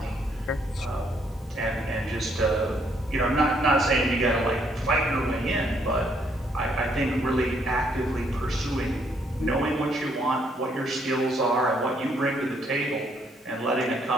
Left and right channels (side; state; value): both; normal; correlation 0.70